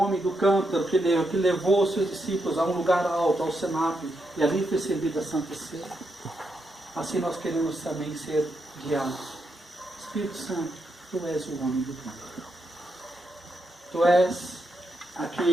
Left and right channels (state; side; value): normal; both; correlation 0.82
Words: do cântaro que levou os seus discípulos a um lugar alto, ao cenáculo, e ali foi servida a Santa Ceia. assim nós queremos também ser guiados. Espírito Santo, Tu és o homem do Pai. Tu és